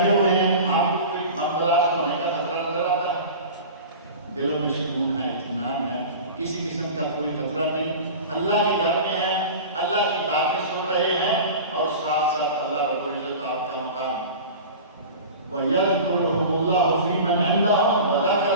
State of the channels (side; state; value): both; inverted; correlation -0.35